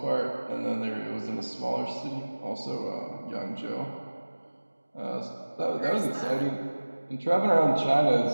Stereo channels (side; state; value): both; inverted; correlation -1.00